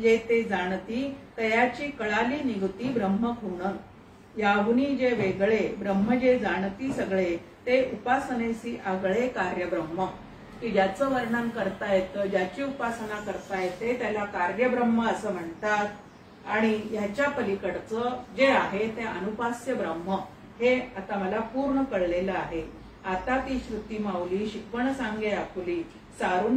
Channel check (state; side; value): identical; both; correlation 1.00